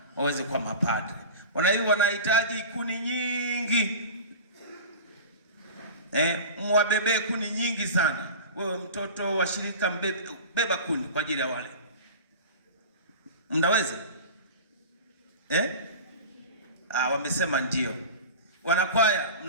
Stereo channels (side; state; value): both; inverted; correlation -0.34